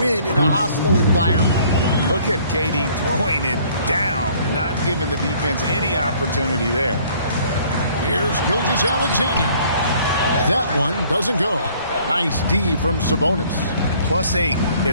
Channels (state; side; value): inverted; both; correlation -0.58